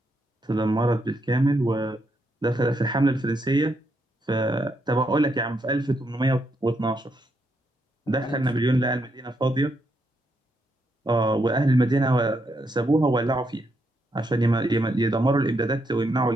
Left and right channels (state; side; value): normal; both; correlation 0.78